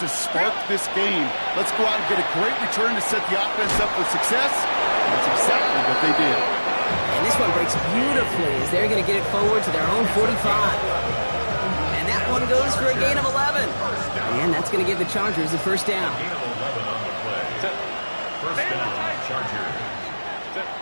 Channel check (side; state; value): both; inverted; correlation -1.00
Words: to spark this game. Let's go out and get a great return to set the offense up for success. That's exactly what they did. And this one breaks beautifully as they're going to get it forward to their own 45. And that one goes for a gain of 11. And that's going to give the Chargers the first down. First down, Chargers.